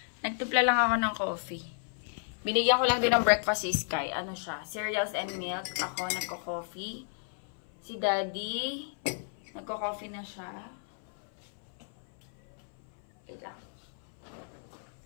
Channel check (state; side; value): silent; right; 56 dB below the other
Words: Nagtimpla lang ako ng coffee. Binigyan ko lang din ng breakfast si Sky. Ano siya? Cereals and milk. Ako nagko-coffee. Si Daddy, nagko-coffee na siya. Wait lang.